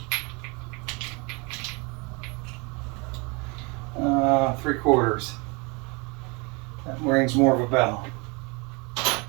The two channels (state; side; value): quieter; left; 29.7 dB